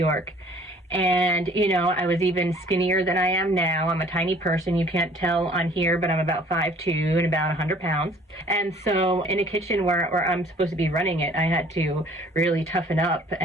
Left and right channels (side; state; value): both; normal; correlation 0.54